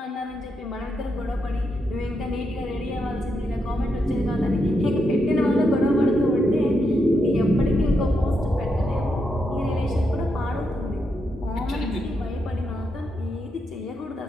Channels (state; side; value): normal; both; correlation 0.82